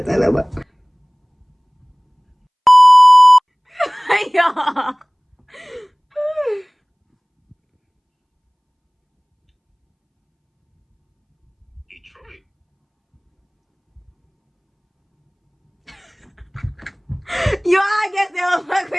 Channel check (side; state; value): both; identical; correlation 1.00